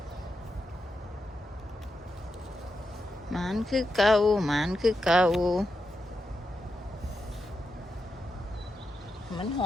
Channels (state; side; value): normal; both; correlation 0.87